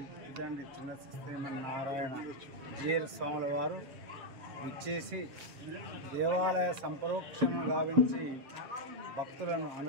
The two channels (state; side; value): late; left; 7.2 ms